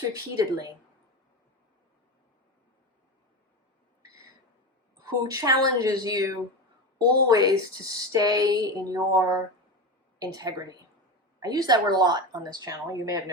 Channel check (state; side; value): normal; both; correlation 0.21